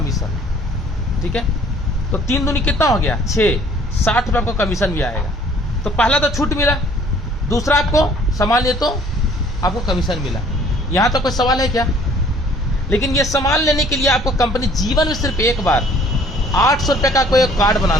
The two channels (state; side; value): normal; both; correlation 0.56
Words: ठीक है। तो 3 दूनी कितना हो गया? 6, 60 रुपये आपको कमीशन भी आएगा। तो पहला तो छूट मिला, दूसरा आपको सामान लिए तो आपको कमीशन मिला। यहाँ तो कोई सवाल है क्या? लेकिन ये सामान लेने के लिए आपको कंपनी जीवन में सिर्फ एक बार 800 रुपये का कोई कार्ड